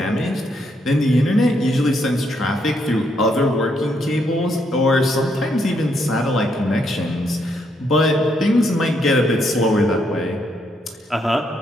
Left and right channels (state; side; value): normal; both; correlation 0.75